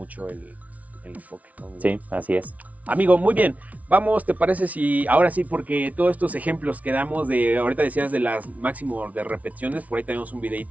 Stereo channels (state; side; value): late; left; 0.070 ms